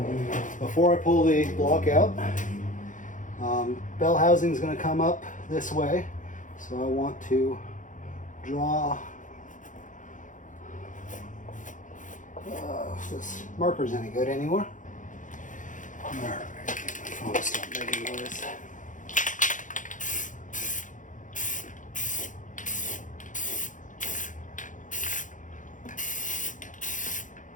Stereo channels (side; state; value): right; late; 0.37 ms